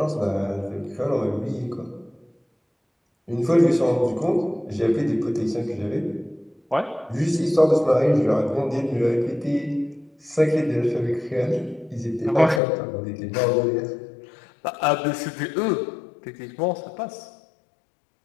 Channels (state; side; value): drops out; right; at 12.6 s